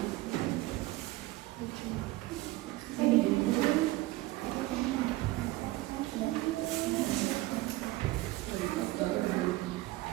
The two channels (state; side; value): quieter; left; 18.8 dB